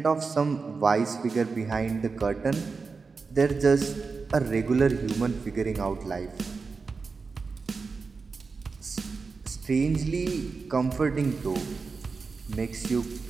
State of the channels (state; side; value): quieter; left; 4.6 dB